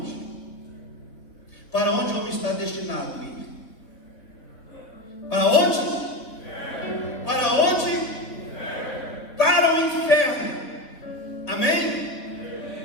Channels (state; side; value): late; right; 3.7 ms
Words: Para onde o homem está destinado a ir? Para onde? Para onde? Para o inferno. Amém?